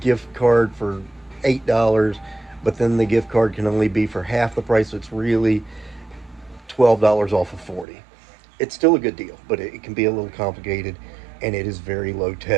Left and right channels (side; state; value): left; drops out; at 7.9 s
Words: card for $8, but then the gift card can only be for half the price. So it's really $12 off of 40. It's still a good deal, but it can be a little complicated, and it is very low